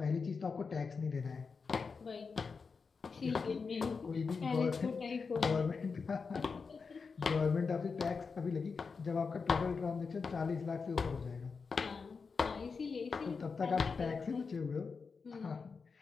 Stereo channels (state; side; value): quieter; right; 5.0 dB